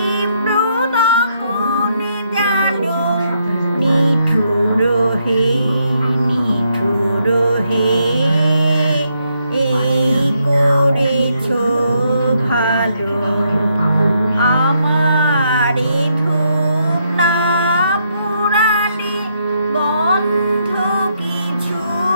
দহন জালো, নিঠুর হে, নিঠুর হে, এই করেছো ভালো। আমারে ধূপ না পুরালে গন্ধ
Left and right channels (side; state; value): both; inverted; correlation -0.76